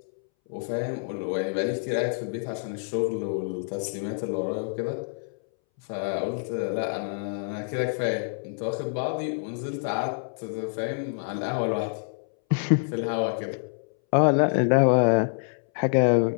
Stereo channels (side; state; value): right; silent; 60 dB below the other